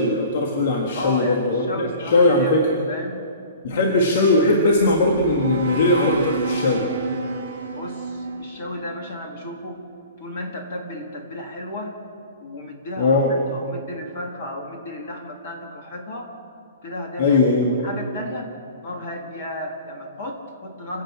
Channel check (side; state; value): both; inverted; correlation -0.44